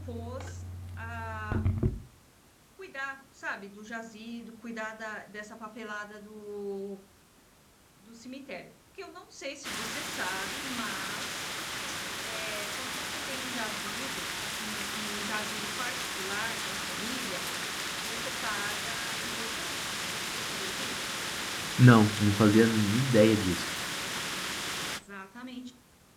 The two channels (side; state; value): both; identical; correlation 1.00